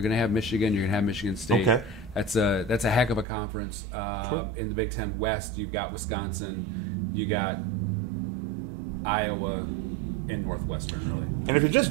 going to have Michigan. You're going to have Michigan State. Okay. That's a heck of a conference. In the Big Ten West, you've got Wisconsin. You got Iowa and Northwestern, really. And if you're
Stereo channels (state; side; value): drops out; left; at 3.2 s